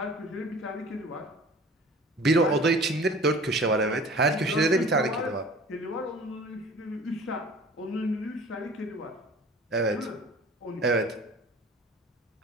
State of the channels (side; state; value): both; normal; correlation 0.45